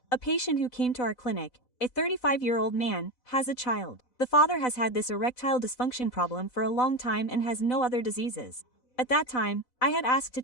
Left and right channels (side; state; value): right; late; 4.0 ms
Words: A patient who came to our clinic, a 35-year-old man, has a child. The father has had this erectile dysfunction problem for a long time and has no other diseases. At that time, I had asked to